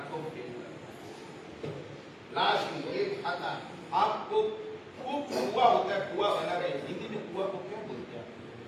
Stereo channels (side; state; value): both; identical; correlation 1.00